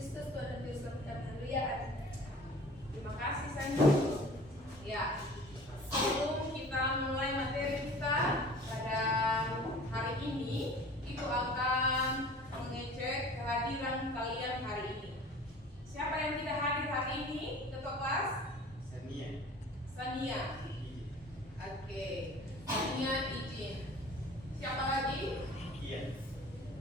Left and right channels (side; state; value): both; normal; correlation 0.44